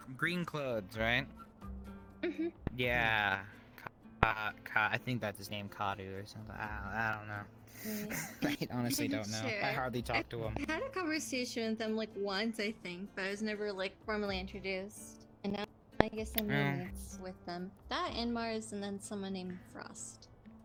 clothes, right? Yeah. I think that's his name, Kadu or something. I don't know. I honestly don't know. I hardly talk to him. I had a conversation with them like once, I think, but I was never like formally introduced. And now I guess I'm roommates with them. That and Mars, and then someone named Frost.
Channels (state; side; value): identical; both; correlation 1.00